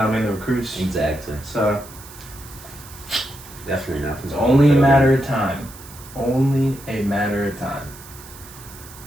the recruits. Exactly. So, Definitely not. it's only a matter of time. Only a matter of time.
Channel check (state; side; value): noise; right; hiss, 18 dB below the sound